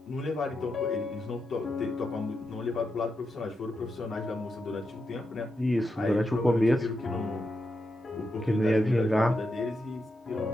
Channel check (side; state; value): both; normal; correlation 0.86